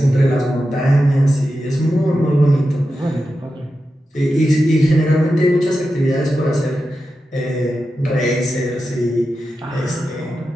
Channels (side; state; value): both; normal; correlation 0.90